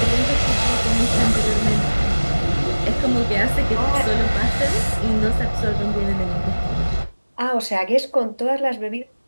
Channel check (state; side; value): inverted; both; correlation -1.00